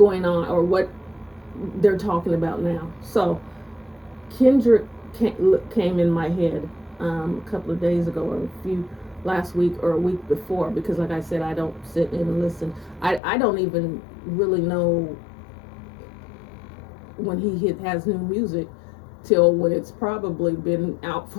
on, or what they're talking about now. So Kendrick came in my head a couple of days ago, or last week or a week before, because like I said, I don't sit in and listen. I don't even really know when he has new music till when it's probably been out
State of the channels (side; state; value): right; drops out; at 13.2 s